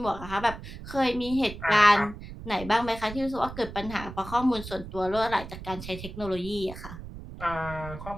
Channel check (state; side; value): noise; right; rumble, 12 dB below the sound